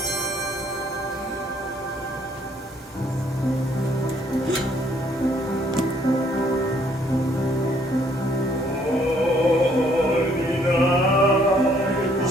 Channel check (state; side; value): normal; both; correlation 0.65